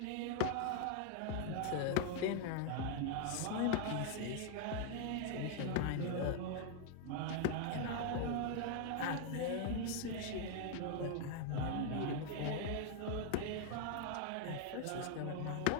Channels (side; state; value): both; different; correlation 0.00